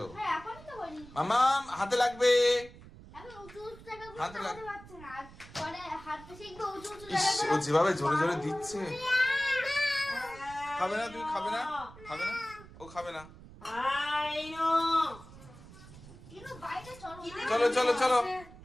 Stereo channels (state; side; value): noise; right; rumble, 18 dB below the sound